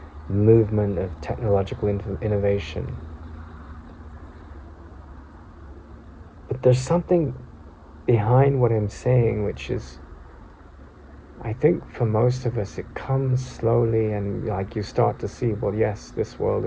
movement of technological innovation. But there's something behind what I'm saying, which is, I think for most of us, it comes slowly, and like you start to see, well, yes, this world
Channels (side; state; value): both; identical; correlation 1.00